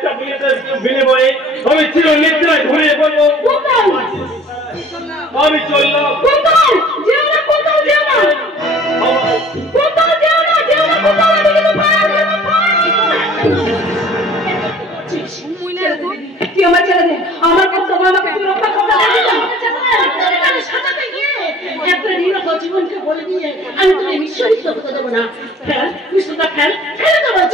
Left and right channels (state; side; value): normal; both; correlation 0.50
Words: বুলেটের বিনিময়ে আমি চির নিদ্রায় ঘুরিয়ে পড়বো। আমি চললাম। আমার ছেলে নেই, আমার কাছে আমাকে তুই রক্ষা করতে সাজাতে গিয়ে একটা নিরহ জীবনকে বলে দিয়ে আমি তোকে নিশ্চয়ই করতে দেবো না। ফেল বিষ্ণুটা ফেল, ফেলে দেবো।